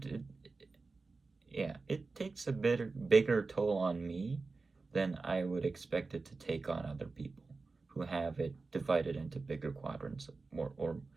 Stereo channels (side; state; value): left; quieter; 3.9 dB